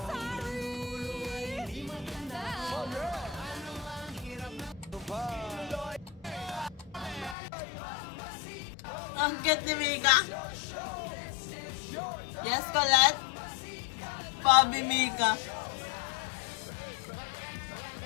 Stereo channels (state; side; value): drops out; right; at 7.4 s